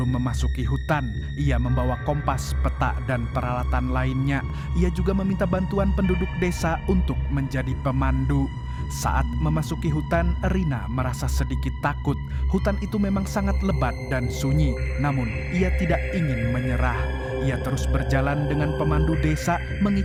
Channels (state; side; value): identical; both; correlation 1.00